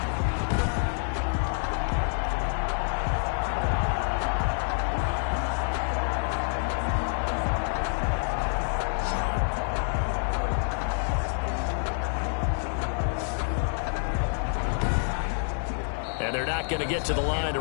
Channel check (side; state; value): right; silent; 60 dB below the other